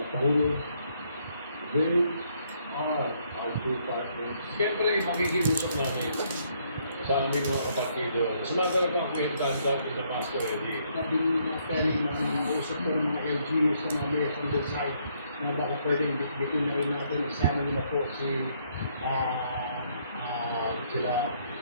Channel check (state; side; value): inverted; both; correlation -0.70